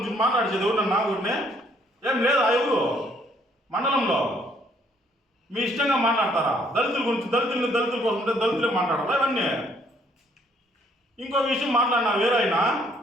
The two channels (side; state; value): both; normal; correlation 0.65